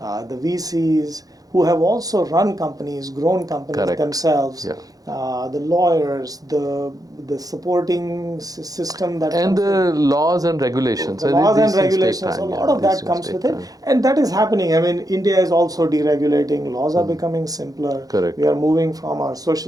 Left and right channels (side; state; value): left; late; 0.18 ms